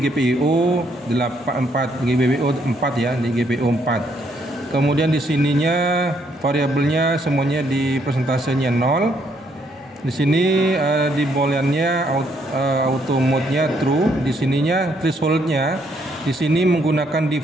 84, GPIO 4 ya, di GPIO 4. Kemudian di sininya variabelnya semuanya di persentasenya 0. Di sini di booleannya auto mode-nya true. Di sininya threshold-nya di sini menggunakan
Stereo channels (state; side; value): normal; both; correlation 0.71